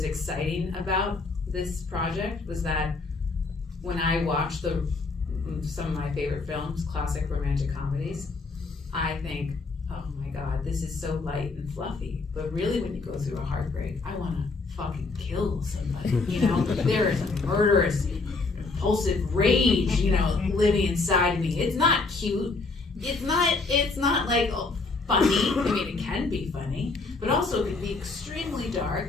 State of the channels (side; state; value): right; quieter; 3.9 dB